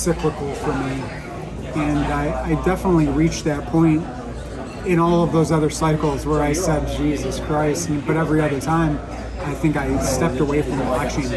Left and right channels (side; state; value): both; identical; correlation 1.00